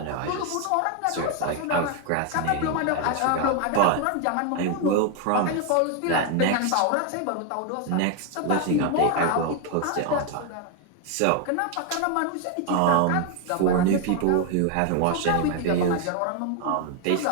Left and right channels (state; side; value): different; both; correlation 0.01